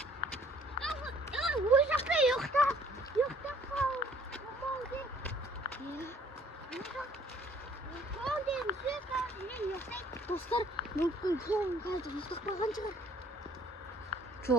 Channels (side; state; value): both; normal; correlation 0.59